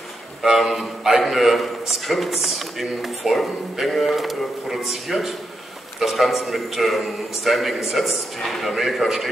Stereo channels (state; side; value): normal; both; correlation 0.84